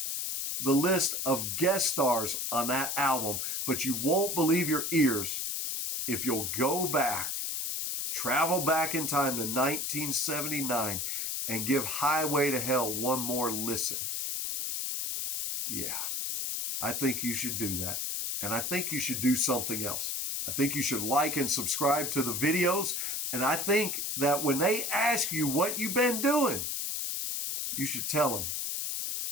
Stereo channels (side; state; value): left; noise; hiss, 2 dB below the sound